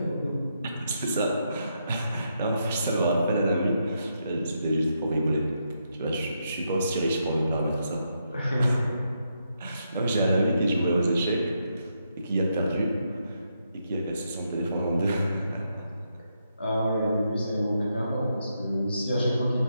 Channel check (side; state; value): both; inverted; correlation -0.81